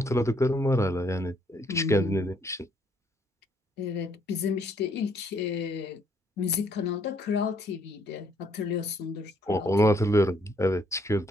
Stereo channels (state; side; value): normal; both; correlation 0.68